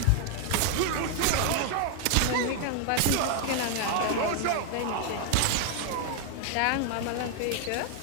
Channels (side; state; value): both; different; correlation 0.00